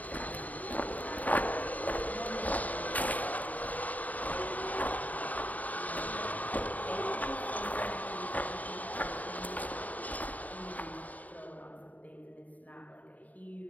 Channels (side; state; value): right; late; 0.075 ms